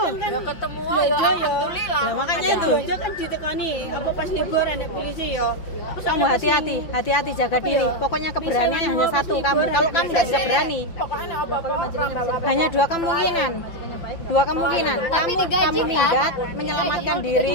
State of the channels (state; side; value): late; right; 6.0 ms